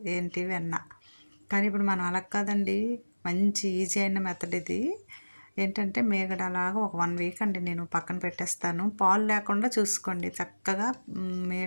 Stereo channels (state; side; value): inverted; both; correlation -1.00